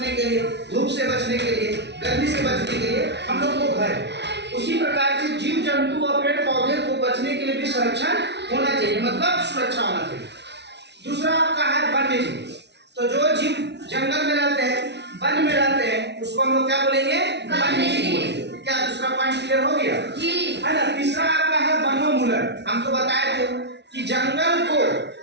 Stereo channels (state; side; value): late; left; 0.50 ms